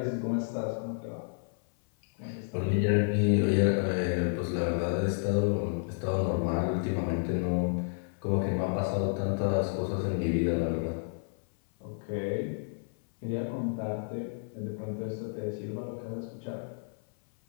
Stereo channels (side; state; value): right; silent; 56 dB below the other